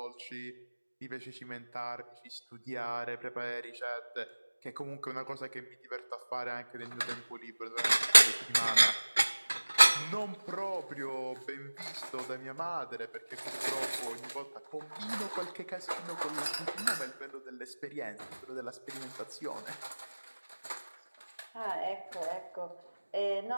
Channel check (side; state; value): both; inverted; correlation -1.00